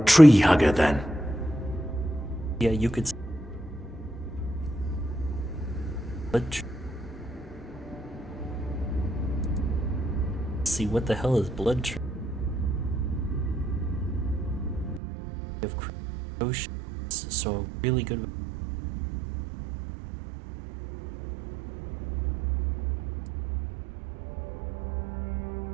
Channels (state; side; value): drops out; left; at 15.0 s